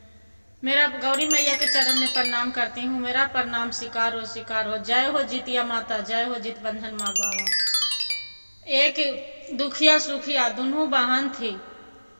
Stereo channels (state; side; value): inverted; both; correlation -1.00